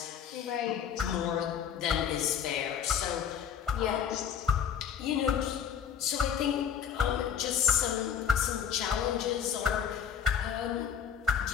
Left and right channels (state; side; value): quieter; right; 8.1 dB